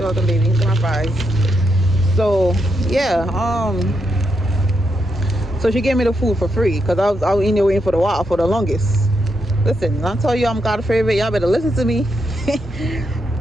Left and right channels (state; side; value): normal; both; correlation 0.82